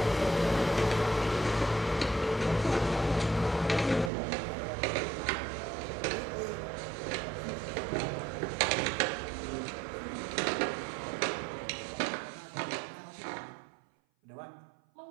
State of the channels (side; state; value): left; drops out; at 4.1 s